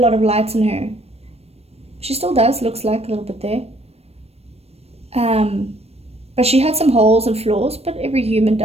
of lights in her. She still does, looks like a little bit there. But she had some holes and flaws, but every human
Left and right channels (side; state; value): left; late; 0.30 ms